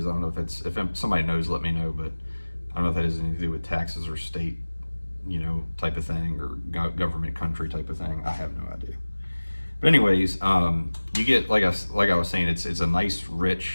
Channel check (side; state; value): both; inverted; correlation -1.00